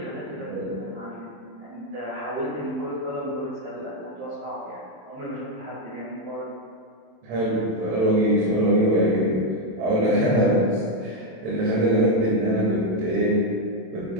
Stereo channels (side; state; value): left; late; 27 ms